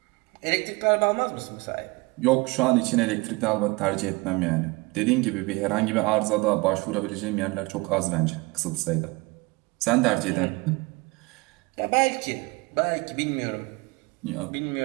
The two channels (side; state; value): left; quieter; 24.9 dB